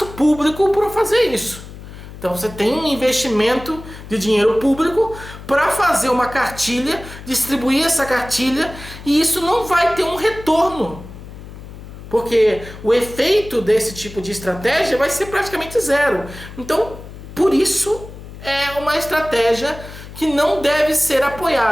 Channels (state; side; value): noise; left; hum, 14 dB below the sound